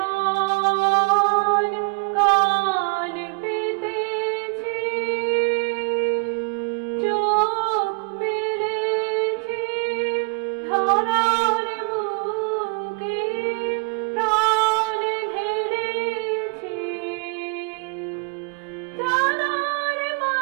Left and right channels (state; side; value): quieter; left; 33.4 dB